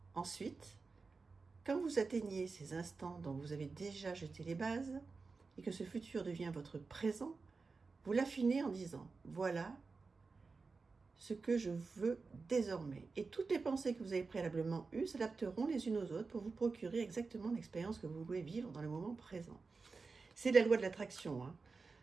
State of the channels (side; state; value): left; quieter; 4.3 dB